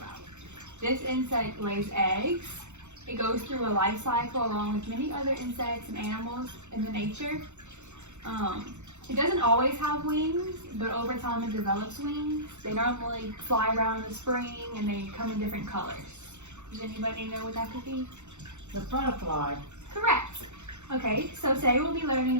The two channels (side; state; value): left; late; 0.83 ms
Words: This insect lays eggs. It goes through a life cycle along with many other insects and animals in the nature. It doesn't always have wings, but over time it develops wings. They normally fly around in the spring and they come in different colors. Does anybody know what that could be? The butterfly. Correct. Okay, so today we'll be learning